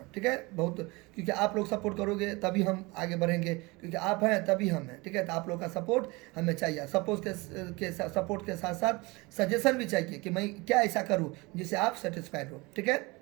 ठीक है। बहुत, क्योंकि आप लोग सपोर्ट करोगे तभी हम आगे बढ़ेंगे, क्योंकि आप हैं तभी हम हैं, ठीक है। तो आप लोग का सपोर्ट हमें चाहिए, सपोर्ट के साथ साथ सजेशन भी चाहिए कि मैं क्या ऐसा करूं जिससे आप सेटिस्फाइड हो, ठीक है।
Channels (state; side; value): quieter; left; 24.6 dB